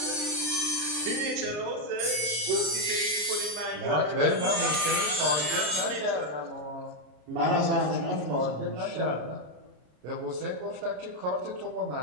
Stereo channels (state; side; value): late; left; 33 ms